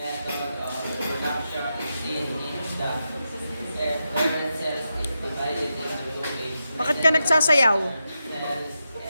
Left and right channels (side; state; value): both; inverted; correlation -0.88